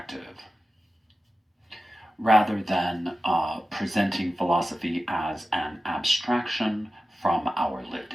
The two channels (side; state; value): both; normal; correlation 0.94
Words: rather than presenting philosophy as an abstraction from our lived